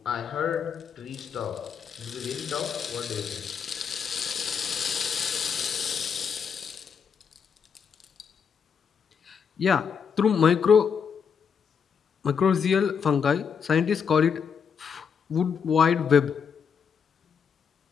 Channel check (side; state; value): right; quieter; 6.7 dB